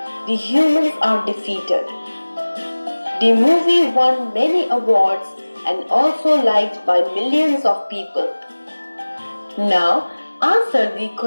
the humans are defeated. The movie won many awards and also liked by millions of people. Now, answer the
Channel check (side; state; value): both; inverted; correlation -1.00